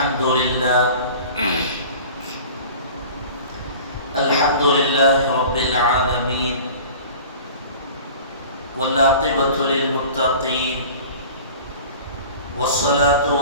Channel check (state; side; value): inverted; both; correlation -0.42